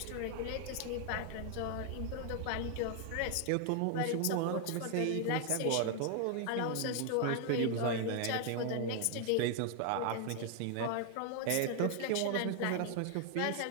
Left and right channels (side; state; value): both; different; correlation 0.00